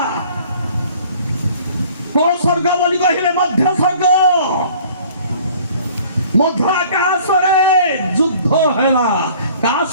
କୋଉ ସ୍ୱର୍ଗ ବୋଲି କହିଲେ? ମଧ୍ୟ ସ୍ୱର୍ଗ। ମଧ୍ୟ ଆକାଶରେ ଯୁଦ୍ଧ ହେଲା। କାହା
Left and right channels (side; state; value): both; inverted; correlation -0.52